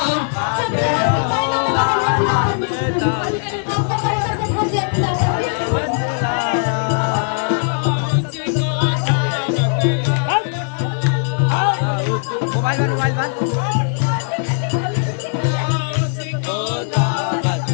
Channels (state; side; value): silent; right; 67 dB below the other